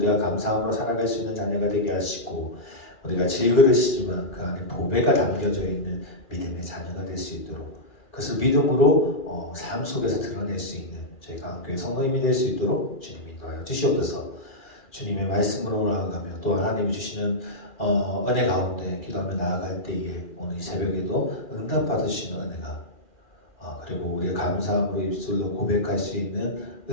감사함으로 살아갈 수 있는 자녀가 되게 하시고 우리가 질그릇이지만 그 안에 보배가 담겨져 있는 믿음의 자녀가 될 수 있도록, 그것을 믿음으로 삶 속에서 드러낼 수 있는 저희가 교회 성도님이 될 수 있도록 주님이 인도하여 주시옵소서. 주님의 말씀으로 나아가며 또 하나님이 주시는 은혜 가운데 기도하며 나아갈 때에 오늘 이 새벽에도 응답받으시는 은혜가, 그리고 우리의 감사함으로 입술로 고백할 수 있는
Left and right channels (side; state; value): right; late; 2.4 ms